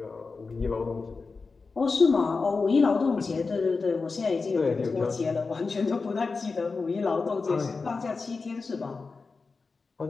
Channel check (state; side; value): quieter; right; 4.3 dB